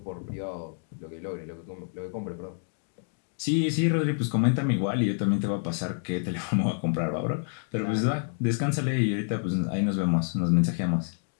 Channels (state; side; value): silent; right; 59 dB below the other